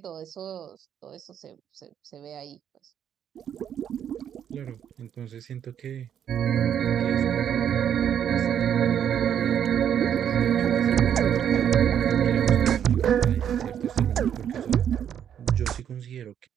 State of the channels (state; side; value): quieter; left; 9.2 dB